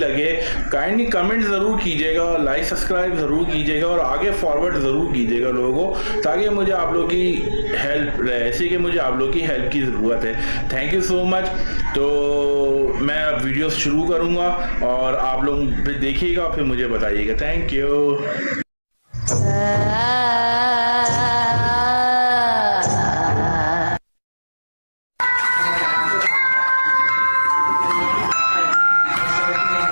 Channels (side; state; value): both; inverted; correlation -1.00